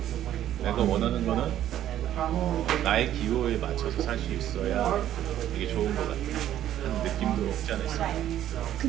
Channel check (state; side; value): quieter; left; 11.8 dB